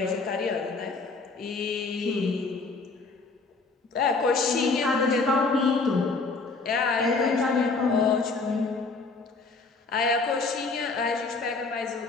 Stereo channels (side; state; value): right; quieter; 4.0 dB